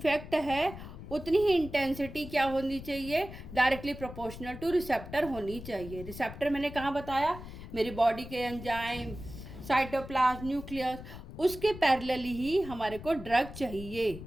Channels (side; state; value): left; noise; rumble, 12 dB below the sound